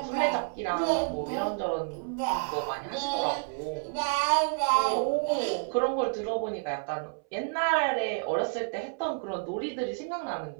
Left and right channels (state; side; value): silent; left; 58 dB below the other